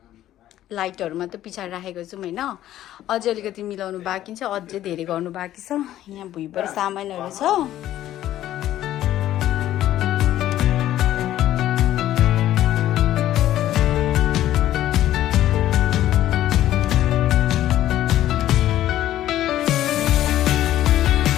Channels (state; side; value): quieter; right; 13.1 dB